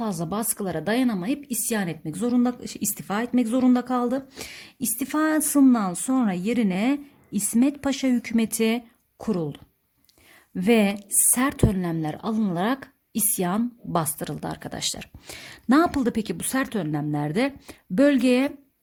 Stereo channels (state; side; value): identical; both; correlation 1.00